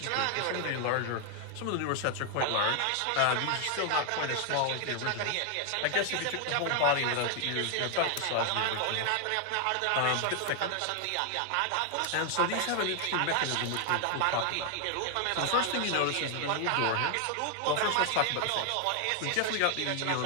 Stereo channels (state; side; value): different; both; correlation 0.00